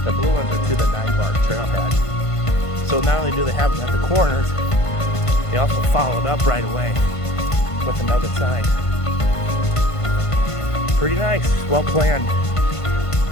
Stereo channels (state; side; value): late; right; 1.5 ms